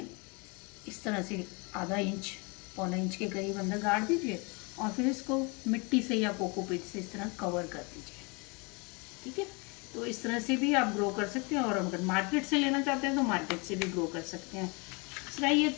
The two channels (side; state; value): right; quieter; 30.2 dB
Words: इस तरह से आधा इंच, पौना इंच के करीब अंदर गाड़ दीजिए और फिर इसको मिट्टी से या कोकोपीट से इस तरह कवर कर दीजिए। ठीक है, तो इस तरह से भी आप ग्रो कर सकते हैं। और अगर मार्केट से लेना चाहते हैं तो मार्केट से भी ग्रो कर सकते हैं। दूसरा ये